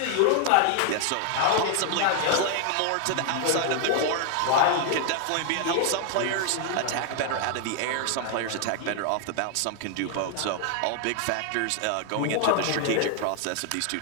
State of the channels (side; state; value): both; different; correlation 0.00